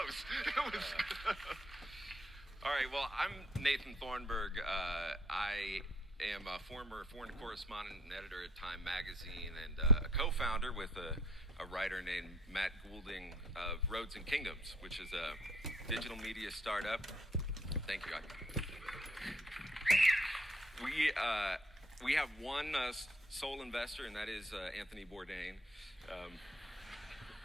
It was. All right, well, I'm Nathan Thornburgh. I am a former foreign correspondent and editor at Time Magazine and a co-founder with a writer named Matt Goulding of Roads and Kingdoms, which is a digital media startup. Thank you, guys. We have one sole investor, and that is Anthony Bourdain,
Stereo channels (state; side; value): normal; both; correlation 0.62